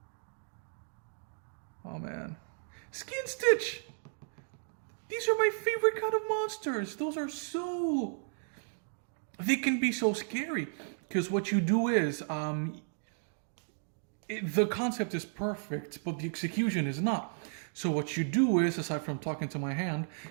Oh man. Skin Stitch! These are my favorite kind of monsters. Those are so... They can be so scary. Because what you do is... the concept is perfect, but the execution is not. So what you do is, aside from talking to my hand,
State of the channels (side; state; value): left; silent; digital silence